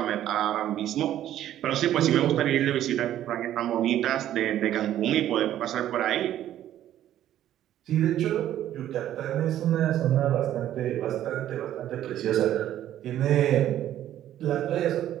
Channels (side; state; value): left; quieter; 12.0 dB